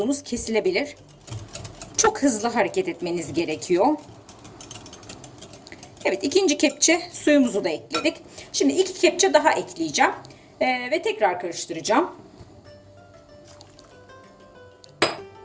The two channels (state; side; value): identical; both; correlation 1.00